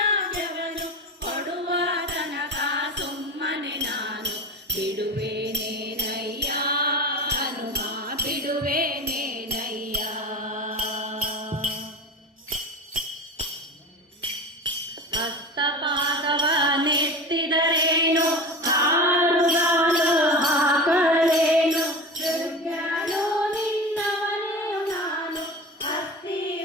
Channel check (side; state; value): both; normal; correlation 0.30